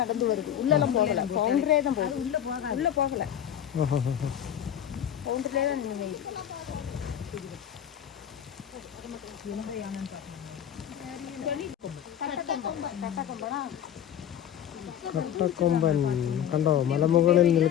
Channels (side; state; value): right; quieter; 9.9 dB